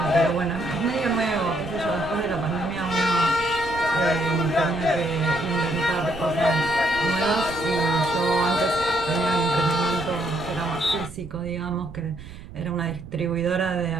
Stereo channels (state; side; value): noise; right; rumble, 14 dB below the sound